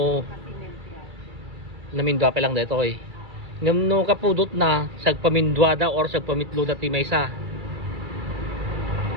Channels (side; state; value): left; late; 2.3 ms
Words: Namindwa pa lang dito eh. Ngam no kapudot na sagpamindwada or sagpamitluda ti maysa.